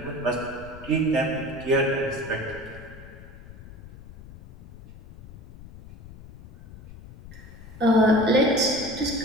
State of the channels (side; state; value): left; noise; rumble, 18 dB below the sound